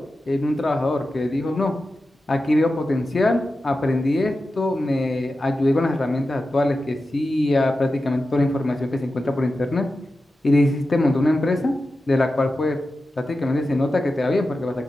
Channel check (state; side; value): normal; both; correlation 0.92